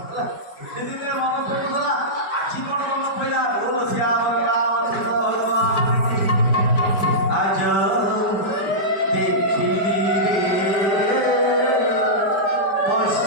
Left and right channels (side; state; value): right; late; 4.9 ms